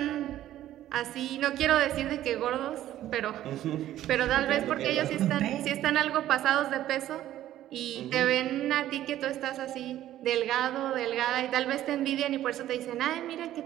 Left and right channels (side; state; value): left; quieter; 13.0 dB